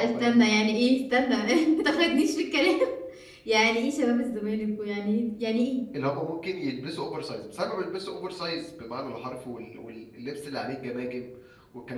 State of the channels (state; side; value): identical; both; correlation 1.00